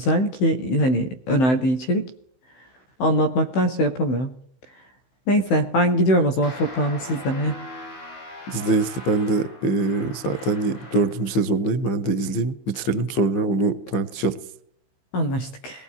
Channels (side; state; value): right; late; 16 ms